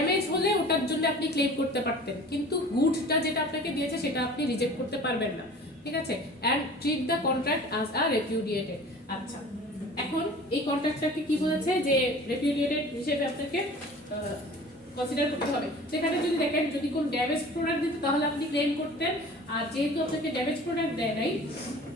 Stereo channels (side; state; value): both; normal; correlation 0.43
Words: হলে ওটার জন্য আপনি ক্লেম করতে পারতেন, কিন্তু গুডসটা যেটা আপনাকে দিয়েছে সেটা আপনি রিজেক্ট করতে পারবেন না, ঠিক আছে। and treat the contract as a repudiated. আচ্ছা, এখন এই কন্ট্রাক্টটাকে কি বলেছে যে repudiated হিসেবে আপনাকে কনসিডার করতে হবে। সেখানে যদি দেখেন যদি কোন ড্যামেজ প্রোডাক্ট দিত তাহলে আপনি ক্লেম করতেন, আর যেহেতু আপনাকে ড্যামেজ প্রোডাক্ট দেয় নাই